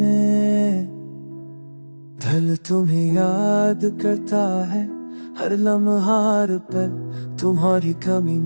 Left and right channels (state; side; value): inverted; both; correlation -1.00